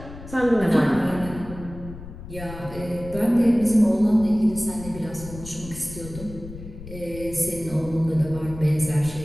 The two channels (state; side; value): noise; left; rumble, 13 dB below the sound